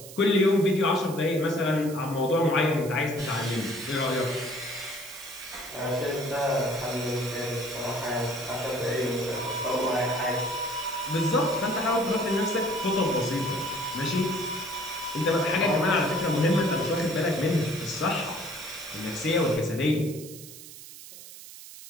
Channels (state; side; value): noise; right; hiss, 15 dB below the sound